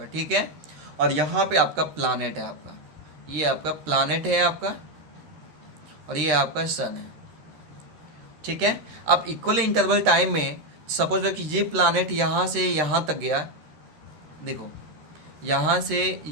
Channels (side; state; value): left; late; 13 ms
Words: ठीक है। और यहाँ पे आपका प्लानेट है आपका, ये आपका प्लानेट है आपका, और ये आपका सन है, ठीक है। अब इक्वल इंटरवल टाइम में सपोज कि ये प्लानेट यहाँ से यहाँ तक गया, देखो यहाँ से